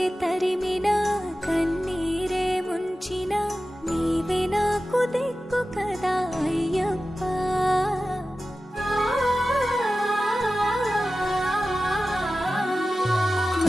తరిమినా కన్నీరే ముంచినా నీవే నాకు దిక్కు కదా అయ్యప్ప.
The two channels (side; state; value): both; normal; correlation 0.94